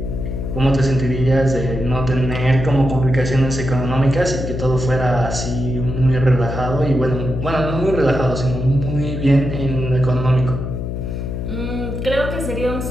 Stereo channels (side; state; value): left; noise; hum, 4 dB below the sound